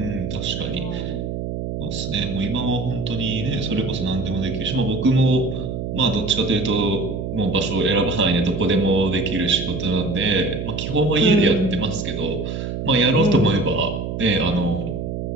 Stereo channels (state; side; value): noise; right; hum, 5 dB below the sound